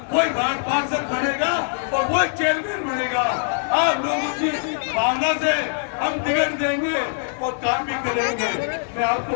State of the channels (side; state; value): right; silent; digital silence